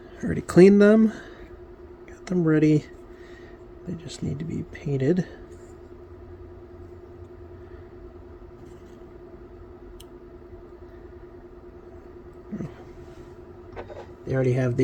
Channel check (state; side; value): identical; both; correlation 1.00